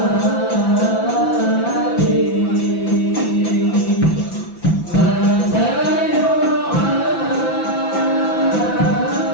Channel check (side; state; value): right; late; 5.9 ms